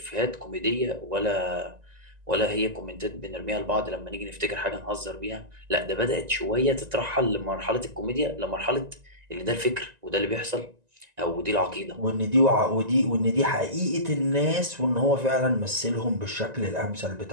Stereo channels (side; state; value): left; late; 1.9 ms